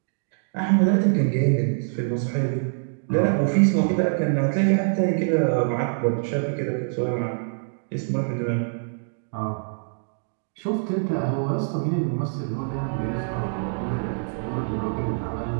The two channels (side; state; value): left; silent; digital silence